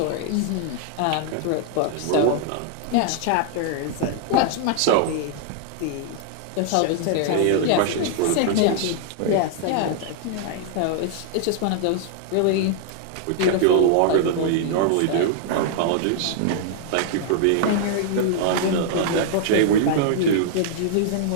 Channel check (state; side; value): different; both; correlation -0.01